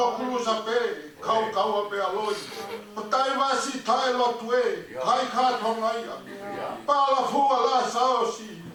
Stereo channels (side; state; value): both; identical; correlation 1.00